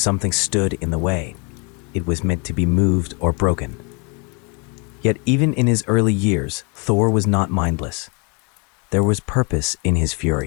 stood in the way, it was meant to be moved or broken. Yet even in his early years, Thor was not mindless. There was purpose in his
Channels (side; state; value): right; quieter; 33.2 dB